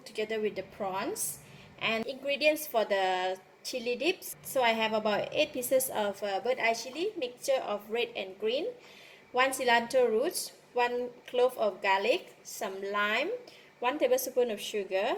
together with the prawns. And ingredients for the chili dips. So I have about 8 pieces of bird eye chili, mixture of red and green, 1 cilantro roots, 1 clove of garlic, some lime, 1 tablespoon of sugar,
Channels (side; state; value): both; identical; correlation 1.00